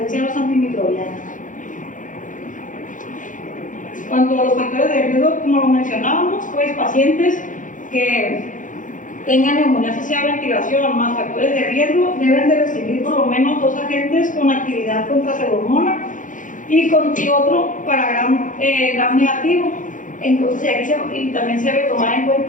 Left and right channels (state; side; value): late; right; 0.38 ms